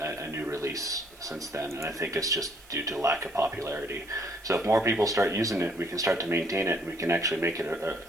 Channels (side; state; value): right; noise; hiss, 24 dB below the sound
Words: new release since then, and I think it's just due to lack of popularity. So if more people start using it, we can start to maintain it, and we can actually make it